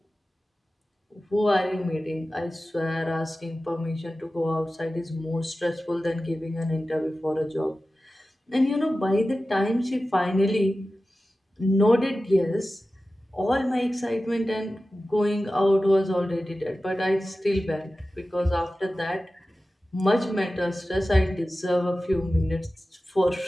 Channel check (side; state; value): both; normal; correlation 0.95